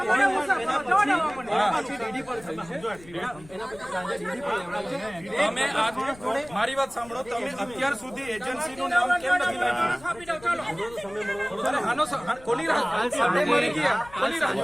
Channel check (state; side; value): noise; left; rumble, 21 dB below the sound